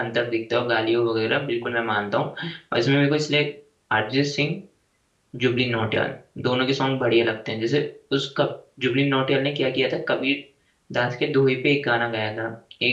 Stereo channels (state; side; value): identical; both; correlation 1.00